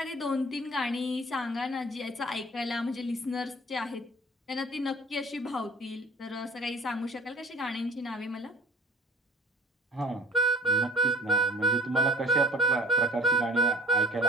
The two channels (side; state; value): both; normal; correlation 0.46